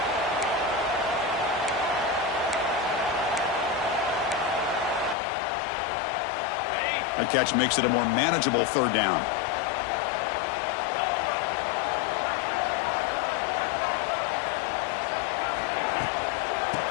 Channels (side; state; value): right; drops out; at 5.2 s